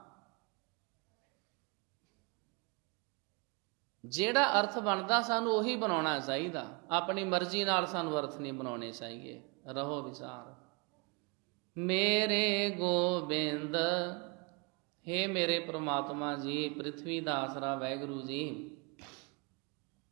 ਜਿਹੜਾ ਅਰਥ ਬਣਦਾ ਸਾਨੂੰ ਉਹੀ ਬਣਾਉਣਾ ਚਾਹੀਦਾ, ਆਪਣੀ ਮਰਜ਼ੀ ਨਾਲ ਸਾਨੂੰ ਅਰਥ ਨਹੀਂ ਬਣਾਉਣੇ ਚਾਹੀਏ। ਰਹੋ ਵਿਚਾਰ। ਮੇਰੇ ਗੋਬਿੰਦ, ਹੇ ਮੇਰੇ ਪ੍ਰਮਾਤਮਾ ਜੀ, ਪ੍ਰਿਥਵੀ ਦਾ ਆਸਰਾ ਵਾਹਿਗੁਰੂ ਜੀ,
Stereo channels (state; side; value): quieter; left; 31.3 dB